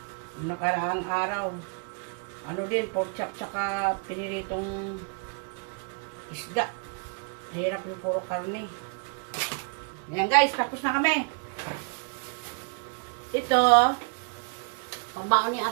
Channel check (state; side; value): quieter; left; 38.7 dB